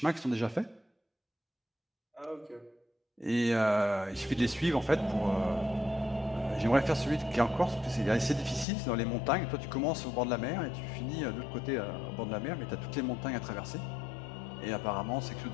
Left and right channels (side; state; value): right; drops out; at 8.7 s